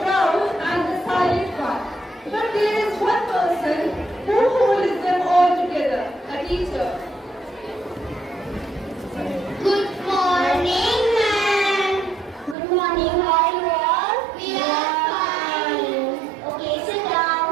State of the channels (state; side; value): drops out; left; at 12.6 s